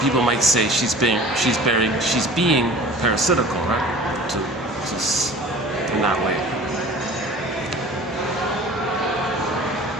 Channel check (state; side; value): normal; both; correlation 0.42